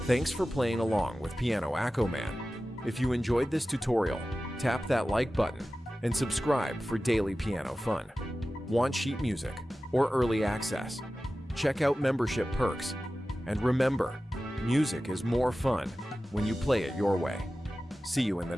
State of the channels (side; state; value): both; normal; correlation 0.95